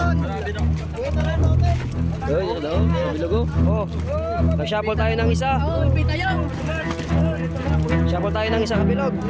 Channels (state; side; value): identical; both; correlation 1.00